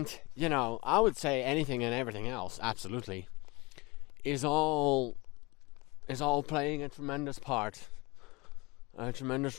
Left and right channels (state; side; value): quieter; right; 24.8 dB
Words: I would say anything and everything else, absolutely, is all playing a tremendous part, a